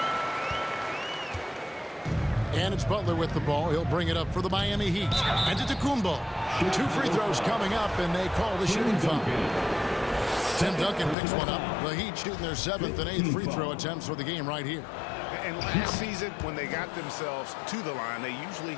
And it's Butler with the ball. He'll bring it up for the Miami Heat. And Antetokounmpo. 2 free throws coming up, and they call the shooting foul. Tim Duncan picks one up. The Heat shooting their 7th and 8th free throw attempts for the game right here. And last season, when they got themselves to the line, they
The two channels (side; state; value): right; drops out; at 11.2 s